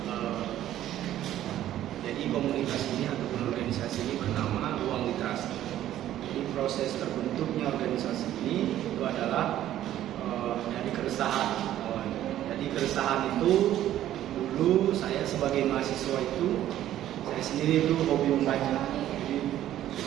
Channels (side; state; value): left; quieter; 12.6 dB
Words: Jadi komunitas ini ataupun organisasi ini bernama Ruang Literasi. Jadi proses terbentuknya organisasi ini itu adalah dari keresahan. Jadi keresahan itu dulu saya sebagai mahasiswa itu saya sendiri itu hobi membaca. Jadi